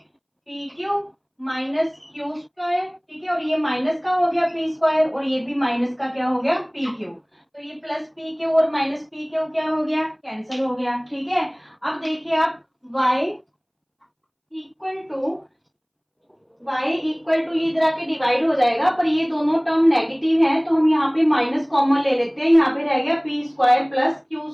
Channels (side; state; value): both; identical; correlation 1.00